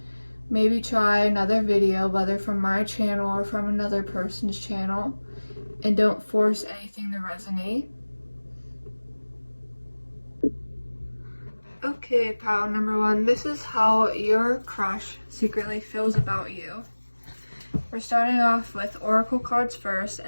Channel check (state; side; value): inverted; both; correlation -1.00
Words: Maybe try another video, whether from my channel or from another person's channel, and don't force anything to resonate. Okay, pile number 1, this is how your crush secretly feels about you. We're starting off with oracle cards first,